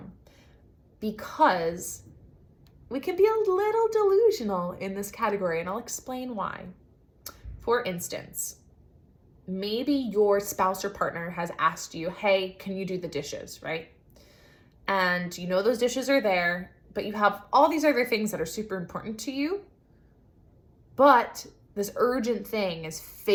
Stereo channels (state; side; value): identical; both; correlation 1.00